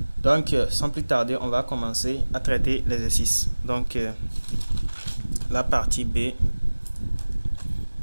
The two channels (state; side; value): inverted; both; correlation -1.00